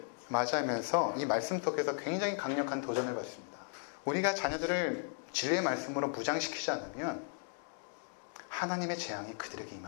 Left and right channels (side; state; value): right; silent; 54 dB below the other